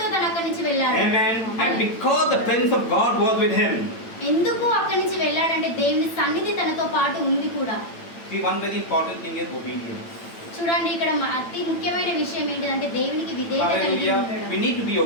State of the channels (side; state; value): right; late; 8.9 ms